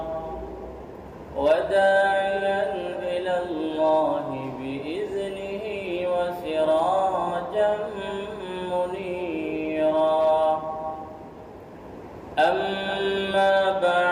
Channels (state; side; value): identical; both; correlation 1.00